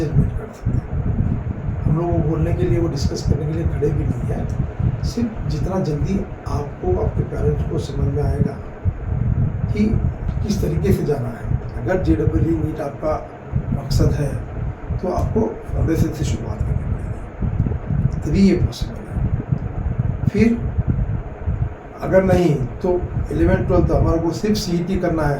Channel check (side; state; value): both; identical; correlation 1.00